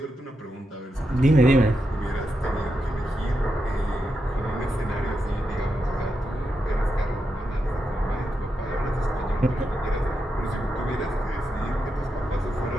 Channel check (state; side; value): normal; both; correlation 0.85